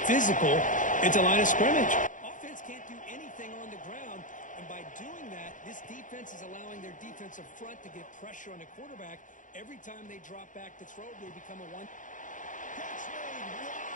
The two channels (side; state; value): right; late; 0.37 ms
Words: physical at the line of scrimmage. Offense can't do anything on the ground, and by doing that, this defense is allowing their defensive front to get pressure on the quarterback. Every time they drop back to throw, they become a one. Catch made